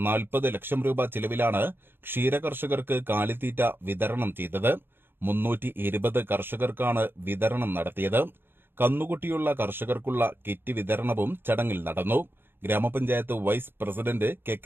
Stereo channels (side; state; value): left; late; 0.10 ms